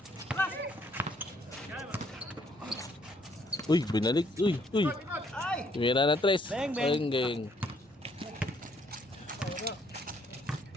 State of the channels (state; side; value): normal; both; correlation 0.67